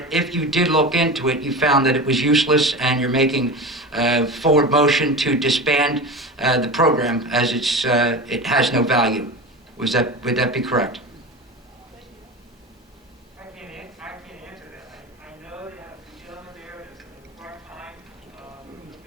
if you did look into it, you found that it was useless and you're making forward motion to disband the program as it has no value. Would that be correct? I can't answer that. I know that the gentleman there is part-time,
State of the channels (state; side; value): normal; both; correlation 0.28